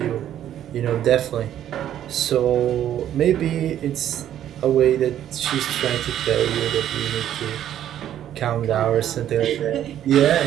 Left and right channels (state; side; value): quieter; left; 11.1 dB